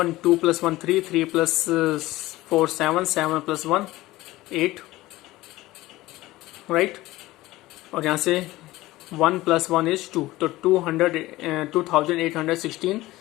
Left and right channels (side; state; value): right; quieter; 17.9 dB